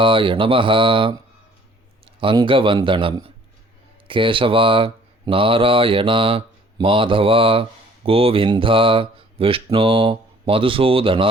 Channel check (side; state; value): both; normal; correlation 0.55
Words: நமः. அங்கவந்தனம். கேசவா, நாராயணா, மாதவா, கோவிந்தா, விஷ்ணு,